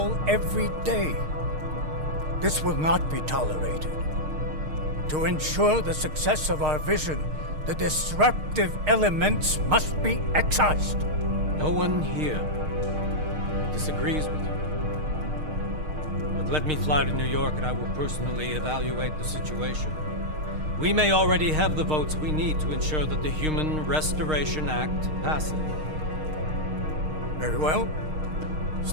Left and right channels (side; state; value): left; late; 6.5 ms